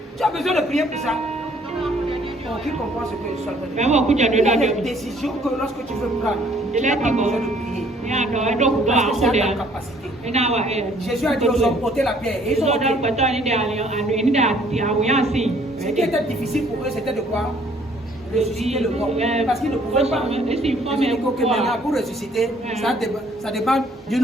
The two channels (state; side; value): normal; both; correlation 0.61